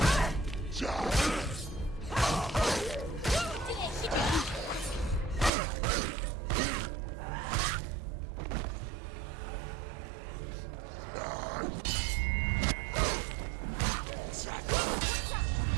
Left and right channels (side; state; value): left; drops out; at 5.5 s